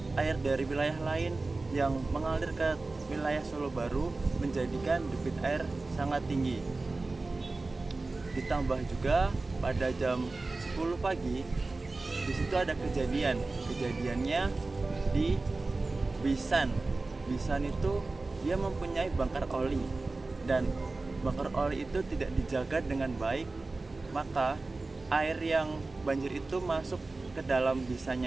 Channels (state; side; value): quieter; left; 3.4 dB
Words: air dari wilayah lain yang mengalir ke wilayah Solo Baru, menjadikan debit air sangat tinggi. Ditambah juga pada jam 10 pagi di situ ada kejadiannya di Bisan. Bisan itu dia mempunyai bangkar oli, dan bangkar oli itu tidak dijaga dengan baik, maka air yang banjir itu masuk ke dalam